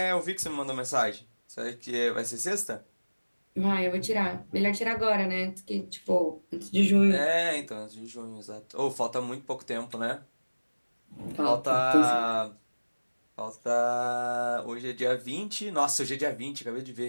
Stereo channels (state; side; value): inverted; both; correlation -1.00